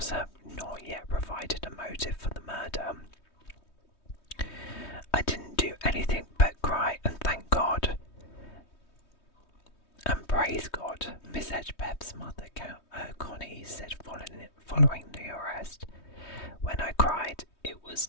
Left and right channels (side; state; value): right; late; 3.2 ms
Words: have not yet provided a motive for the murder. I didn't do anything but cry and thank God. And praise God, Miss Hedgepeth's mother, Connie, said following the arrest. When I cried, it was